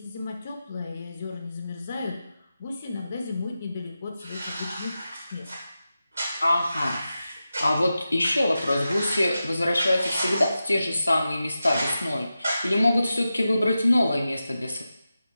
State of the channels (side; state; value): both; inverted; correlation -0.92